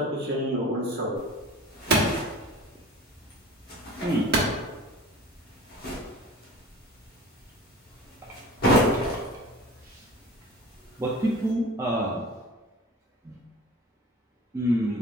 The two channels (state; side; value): normal; both; correlation 0.40